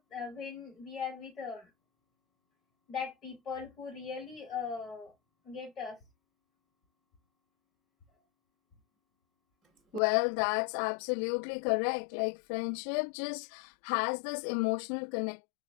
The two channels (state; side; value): drops out; right; at 10.0 s